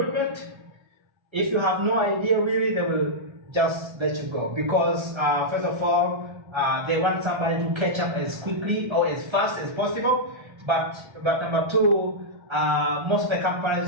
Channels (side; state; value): left; late; 1.3 ms